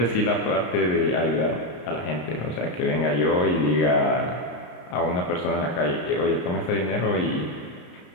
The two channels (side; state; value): right; late; 33 ms